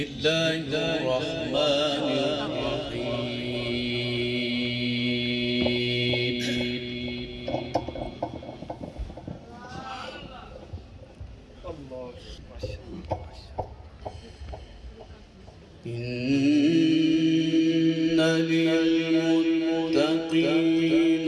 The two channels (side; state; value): both; identical; correlation 1.00